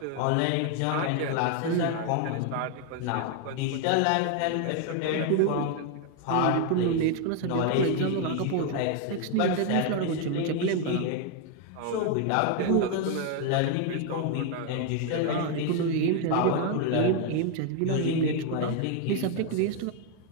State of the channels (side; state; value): both; different; correlation 0.01